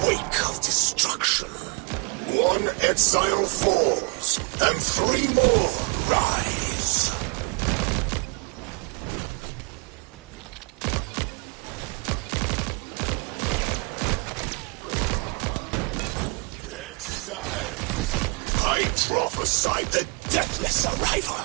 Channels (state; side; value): quieter; left; 33.6 dB